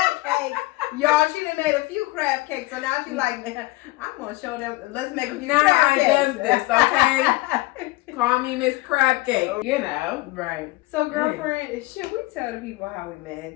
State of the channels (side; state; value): right; quieter; 21.1 dB